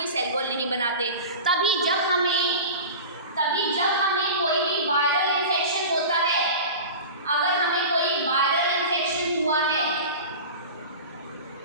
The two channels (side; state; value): both; inverted; correlation -0.33